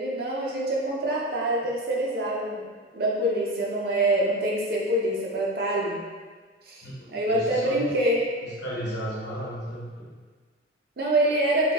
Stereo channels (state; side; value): normal; both; correlation 0.23